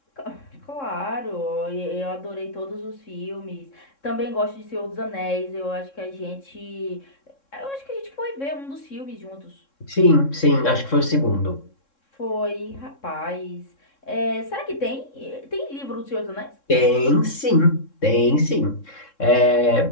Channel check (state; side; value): late; right; 3.7 ms